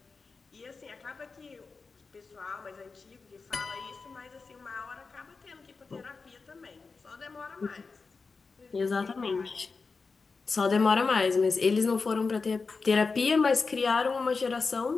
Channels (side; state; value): right; quieter; 4.5 dB